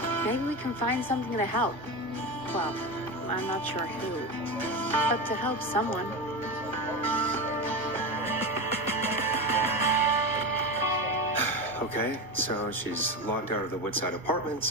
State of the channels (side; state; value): both; normal; correlation 0.21